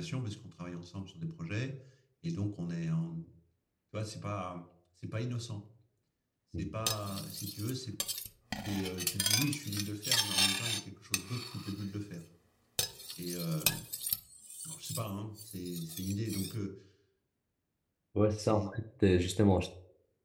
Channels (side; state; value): both; identical; correlation 1.00